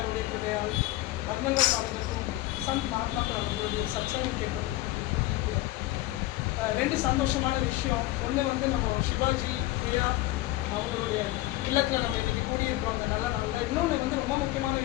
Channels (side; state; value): right; quieter; 17.4 dB